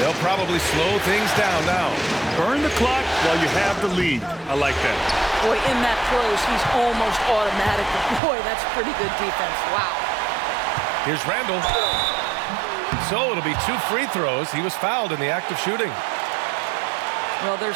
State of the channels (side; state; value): left; drops out; at 8.2 s